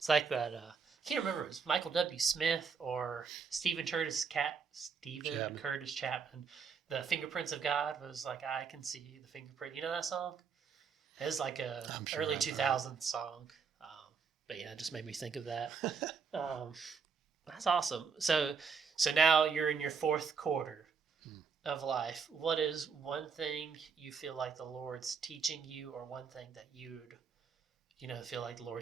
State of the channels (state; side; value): quieter; left; 5.7 dB